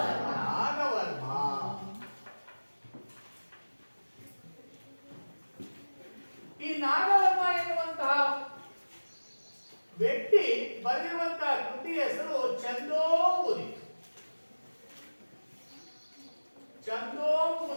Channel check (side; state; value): both; inverted; correlation -1.00